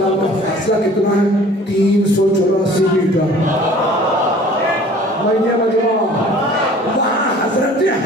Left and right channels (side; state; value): both; normal; correlation 0.48